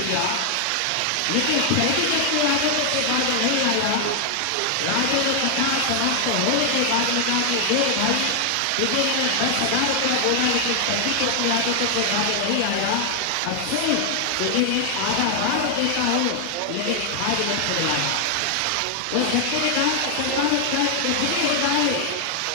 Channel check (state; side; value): different; both; correlation 0.00